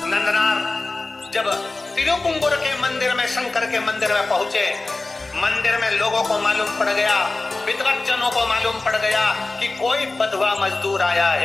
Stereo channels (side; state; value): right; quieter; 3.2 dB